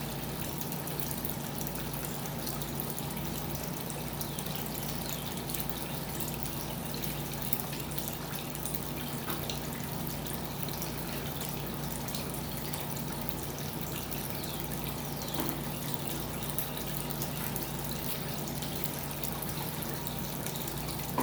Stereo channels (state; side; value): identical; both; correlation 1.00